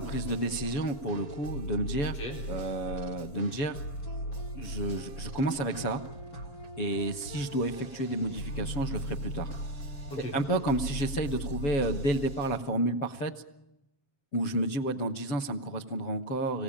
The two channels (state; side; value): late; right; 7.3 ms